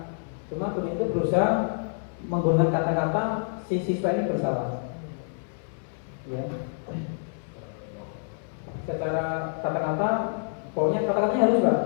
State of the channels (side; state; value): right; silent; 60 dB below the other